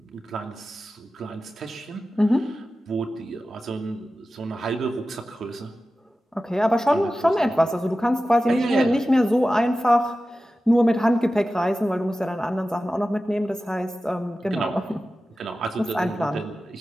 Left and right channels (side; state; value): both; normal; correlation 0.94